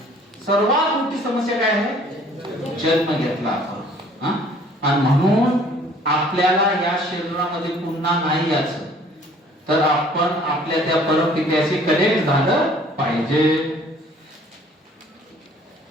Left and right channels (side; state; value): both; normal; correlation 0.55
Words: सर्वात मोठी समस्या काय आहे? जन्म घेतला आपण. आणि म्हणून आपल्याला या शरीरामध्ये पुन्हा नाही यायचं, तर आपण आपल्या त्या परमपित्याशी कनेक्ट झालं पाहिजे.